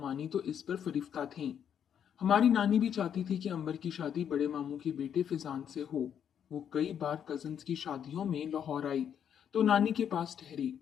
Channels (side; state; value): right; quieter; 8.7 dB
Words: तो इस पर फरिफ्ता थीं। हमारी नानी भी चाहती थी कि अंबर की शादी बड़े मामू के बेटे फिजान से हो। वो कई बार कजन्स की शादियों में लाहौर आई तो नानी के पास ठहरी।